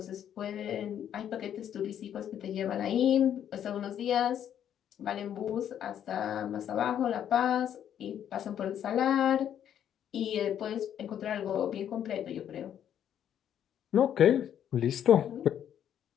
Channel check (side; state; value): right; quieter; 9.8 dB